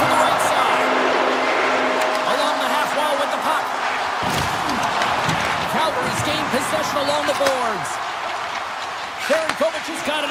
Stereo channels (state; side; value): identical; both; correlation 1.00